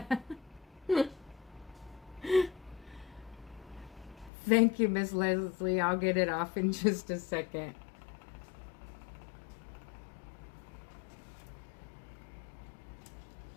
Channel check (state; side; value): drops out; right; at 4.3 s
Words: Thank you, Miss Leslie. I'll get it off in just a second.